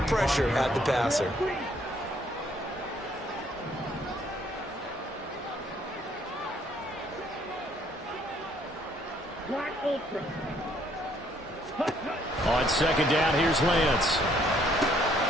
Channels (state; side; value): normal; both; correlation 0.65